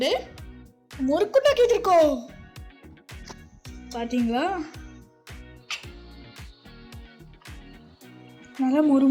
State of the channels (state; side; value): identical; both; correlation 1.00